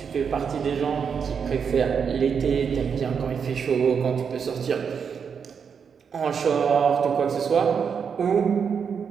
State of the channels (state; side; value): quieter; left; 6.6 dB